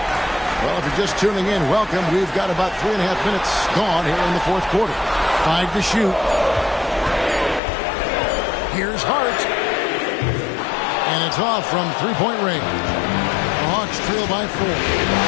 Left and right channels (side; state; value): right; drops out; at 7.6 s